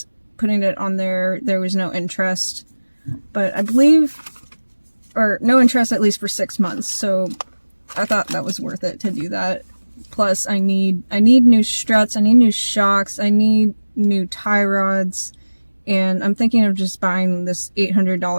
putting it on there was no interest. But I believe, or no interest at least for 6 months. So I thought that was worth it to do that. Plus I need new struts, I need new shocks, I need new tie rods, and I'm thinking of just buying this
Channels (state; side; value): inverted; both; correlation -1.00